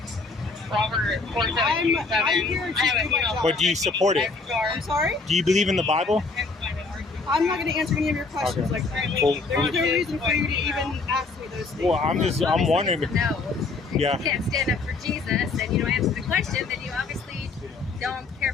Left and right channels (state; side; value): quieter; right; 4.0 dB